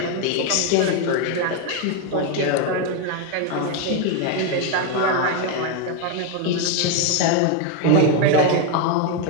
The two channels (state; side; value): different; both; correlation 0.02